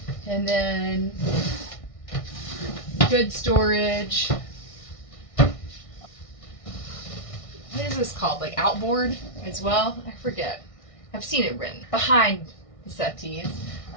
And then good storage. What is this called? Like outboard as well? I forget. I've seen it written behind the settees.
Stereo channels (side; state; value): right; late; 1.6 ms